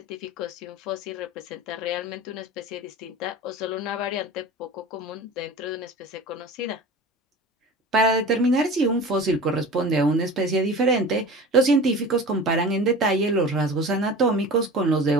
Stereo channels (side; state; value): both; normal; correlation 0.36